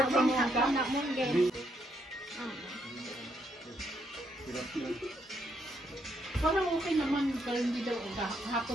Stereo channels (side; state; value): both; normal; correlation 0.75